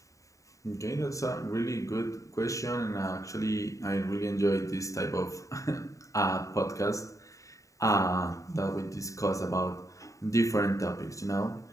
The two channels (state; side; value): late; right; 0.16 ms